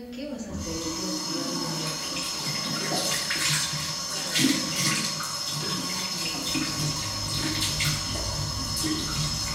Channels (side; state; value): both; identical; correlation 1.00